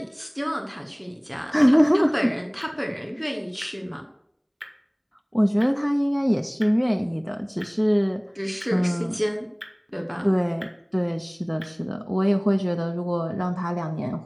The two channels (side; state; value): both; identical; correlation 1.00